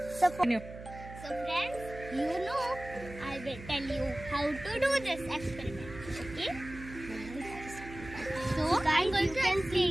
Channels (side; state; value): right; noise; hum, 13 dB below the sound